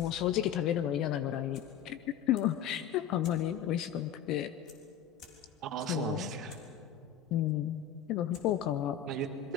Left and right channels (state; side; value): quieter; right; 8.6 dB